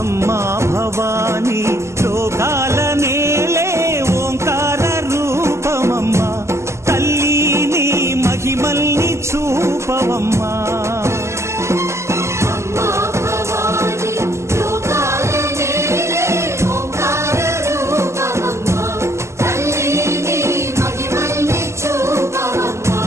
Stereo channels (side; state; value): left; late; 0.13 ms